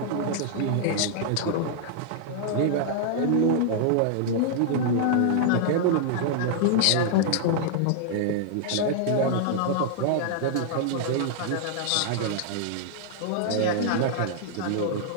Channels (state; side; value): different; both; correlation -0.01